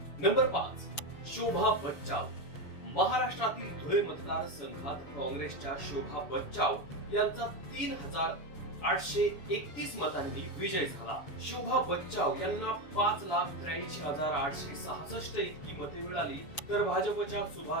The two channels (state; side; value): late; right; 7.0 ms